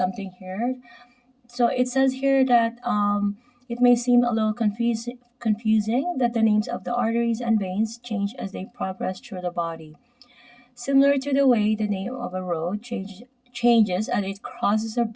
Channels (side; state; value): both; identical; correlation 1.00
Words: here. So it says here that it may seem a little confusing that the names of the arteries and veins change as they progress through the body. Similar to the way the name of a road changes as it crosses a